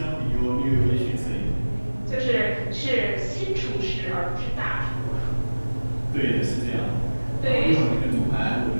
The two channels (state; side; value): inverted; both; correlation -1.00